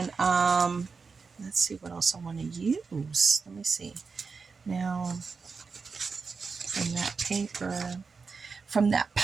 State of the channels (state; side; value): quieter; left; 4.9 dB